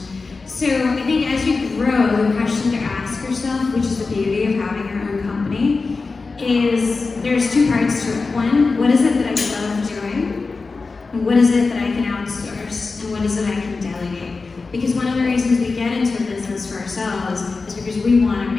So I think as you grow, the question to ask yourself, which is the beauty of having your own company, is there's 2 parts to it. One, what is it that I love doing? And what is it that I can outsource? And what is it I can delegate? Because one of the reasons we get into a business for ourselves is because we want to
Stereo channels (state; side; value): quieter; right; 4.1 dB